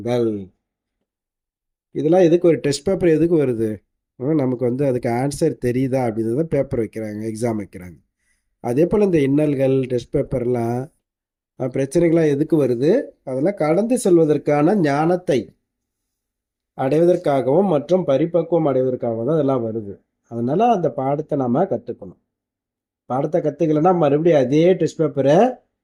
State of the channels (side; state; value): both; identical; correlation 1.00